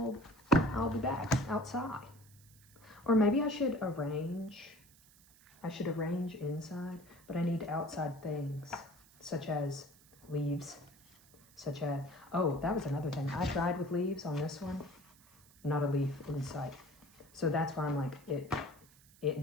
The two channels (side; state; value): right; noise; hiss, 26 dB below the sound